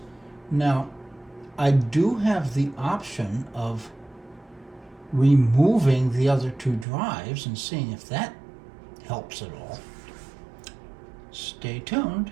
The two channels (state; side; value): drops out; left; at 6.9 s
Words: Now, I do have the option of removing the other two drives and seeing if that helps at all. Stay tuned.